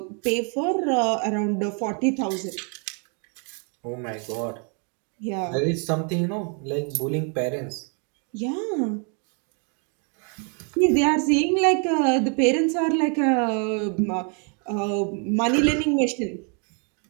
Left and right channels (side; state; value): left; quieter; 39.2 dB